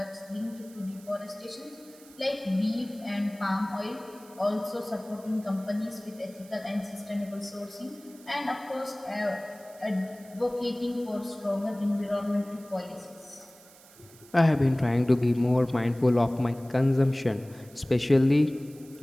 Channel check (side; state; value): right; noise; hiss, 23 dB below the sound